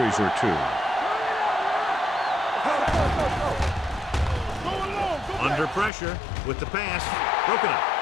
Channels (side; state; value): right; drops out; at 5.9 s